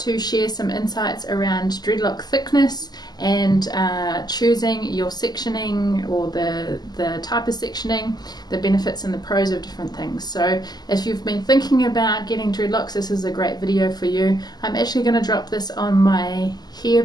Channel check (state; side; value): late; right; 0.20 ms